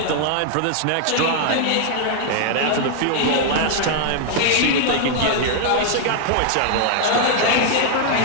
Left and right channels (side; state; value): both; different; correlation 0.00